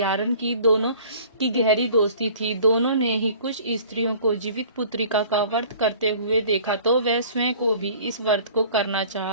की दोनों की गहरी दोस्ती थी। दोनों ने ही कुछ स्त्रियों को जीवित पुत्रिका का व्रत करते हुए देखा, तो वह स्वयं को भी इस व्रत को करना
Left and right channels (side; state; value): both; inverted; correlation -0.48